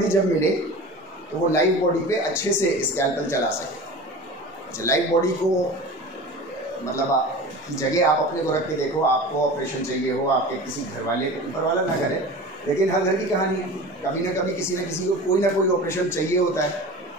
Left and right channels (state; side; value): normal; both; correlation 0.35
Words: जब मिले तो वो लाइव बॉडी पे अच्छे से स्कैल्पेल चला सके। अच्छा, लाइव बॉडी को मतलब की जगह आप अपने को रख के देखो, आपको ऑपरेशन चाहिए हो, आपके किसी घर वाले को, ऊपर वाला ना करे, लेकिन हर घर की कहानी है, कभी ना कभी किसी न किसी को कोई ना कोई ऑपरेशन चाहिए होता है।